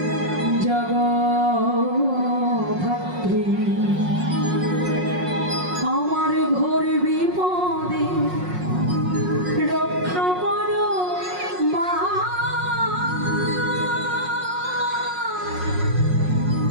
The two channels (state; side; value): late; left; 5.5 ms